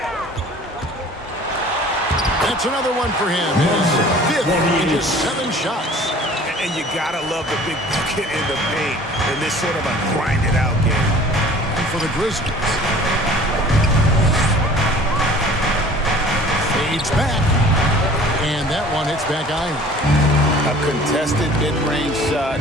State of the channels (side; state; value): both; normal; correlation 0.47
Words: That's another one for him. His 5th in just 7 shots. And you gotta love the big bucket in the paint in this sort of a grinded-out game. And for the Grizzlies. Fades back. And that one hits back iron. A contested mid-range shot